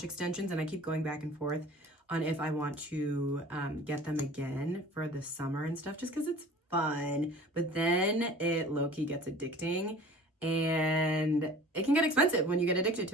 extensions and I keep going back and forth on if I want to get them again for the summer and stuff, just because it's fun. But then it low-key gets addicting and it can get expensive when you get addicted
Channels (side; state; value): both; normal; correlation 0.44